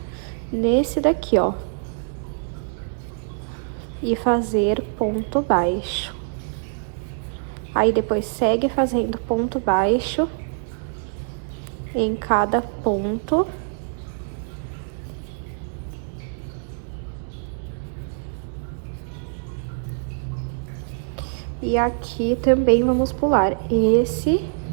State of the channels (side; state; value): left; silent; digital silence